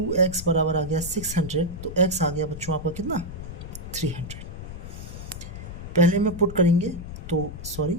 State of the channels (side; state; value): left; noise; rumble, 10 dB below the sound